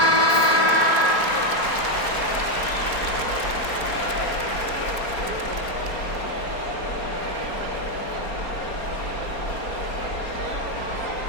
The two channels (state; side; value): late; right; 4.3 ms